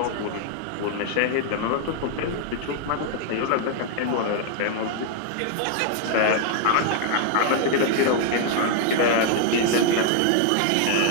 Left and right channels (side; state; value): both; different; correlation 0.00